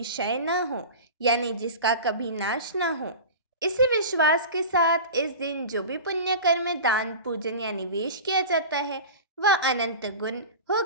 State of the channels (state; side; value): inverted; both; correlation -0.32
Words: क्षय न हो, यानी जिसका कभी नाश न हो। इसी विश्वास के साथ इस दिन जो भी पुण्य कर्म, दान, पूजन या निवेश किया जाता है वह अनंत गुण